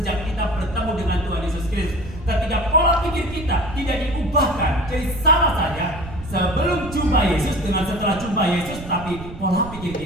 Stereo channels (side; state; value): right; noise; rumble, 13 dB below the sound